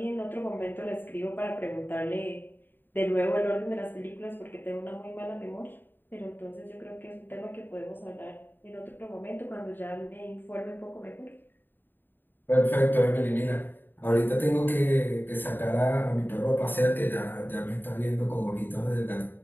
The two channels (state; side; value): late; right; 0.094 ms